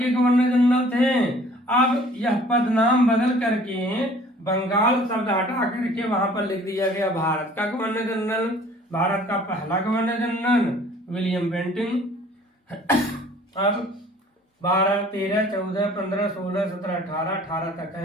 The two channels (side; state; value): both; normal; correlation 0.53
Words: गवर्नर जनरल थे। अब यह पद नाम बदल करके बंगाल शब्द हटा करके वहां पर लिख दिया गया भारत का गवर्नर जनरल। भारत का पहला गवर्नर जनरल विलियम बेंटिंक। अब 12 13 14 15 16 17 18 तक